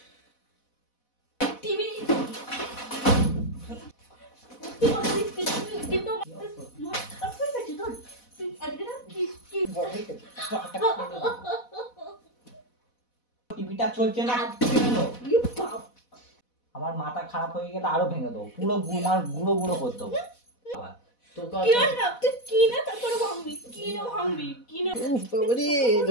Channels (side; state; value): right; late; 4.1 ms